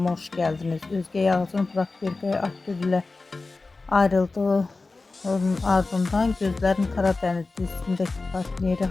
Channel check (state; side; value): quieter; right; 3.6 dB